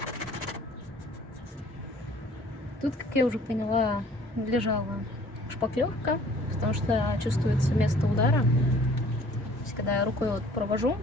Тут, как я уже поняла, лежала шпаклевка, потому что чувствуется место удара. То есть, когда я рукой вот провожу,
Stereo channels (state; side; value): normal; both; correlation 0.53